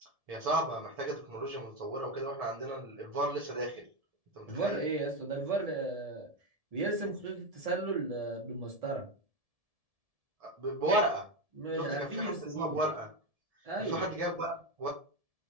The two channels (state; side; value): late; left; 1.7 ms